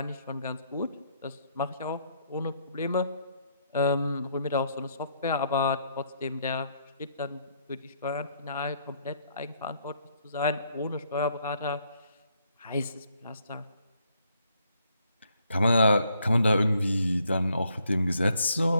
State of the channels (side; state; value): both; inverted; correlation -0.71